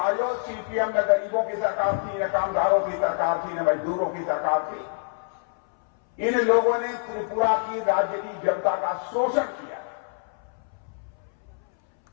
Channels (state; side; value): silent; right; 61 dB below the other